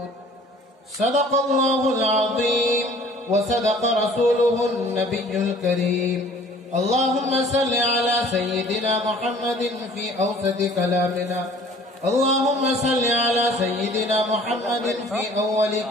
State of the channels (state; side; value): normal; both; correlation 0.51